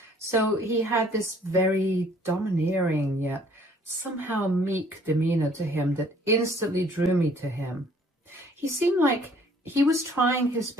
So he had this very domineering yet somehow meek demeanor to him that instantly drew me to him. He seemed like he was trying his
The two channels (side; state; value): both; normal; correlation 0.58